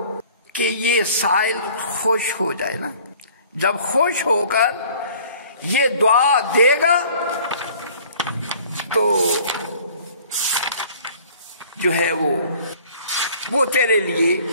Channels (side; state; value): both; inverted; correlation -0.51